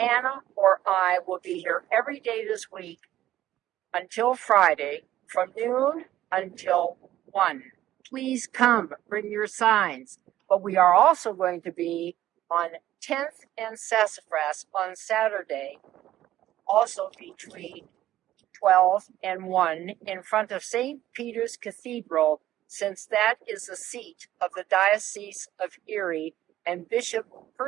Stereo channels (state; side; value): quieter; left; 13.6 dB